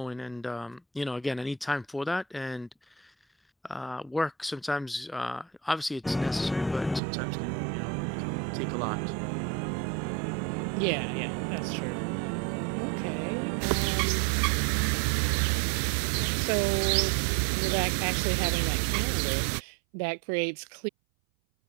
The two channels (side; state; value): left; drops out; at 7.0 s